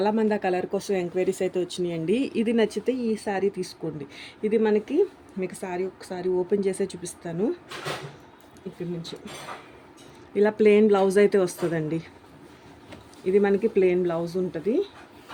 ఆ కలర్ కోసం ఎంక్వైరీస్ అయితే వచ్చినాయండి. ఇది నచ్చితే ఈ శారీ తీసుకోండి. ఇది మనకి మీకు శారీ ఒకసారి ఓపెన్ చేసే చూపిస్తాను. ఇక్కడి నుంచి ఇలా ప్లెయిన్ బ్లౌజ్ అయితే వస్తుందండి. ఇది మనకి ప్లెయిన్ బ్లౌజ్ ఉంటుంది.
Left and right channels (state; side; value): identical; both; correlation 1.00